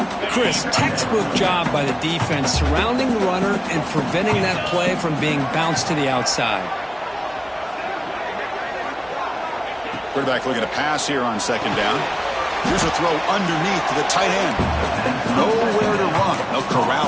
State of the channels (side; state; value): both; identical; correlation 1.00